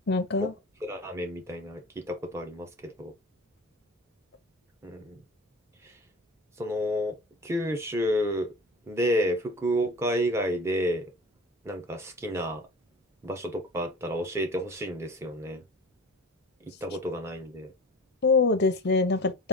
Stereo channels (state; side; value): normal; both; correlation 0.38